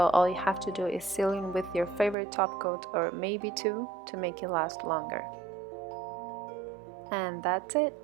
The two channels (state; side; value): drops out; left; at 2.1 s